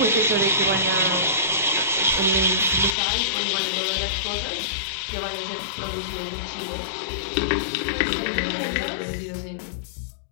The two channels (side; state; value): right; drops out; at 3.0 s